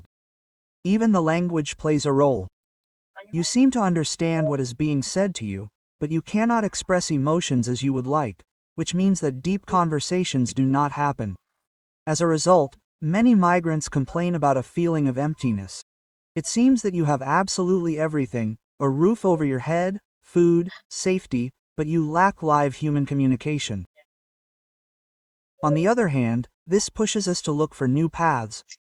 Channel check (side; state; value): both; identical; correlation 1.00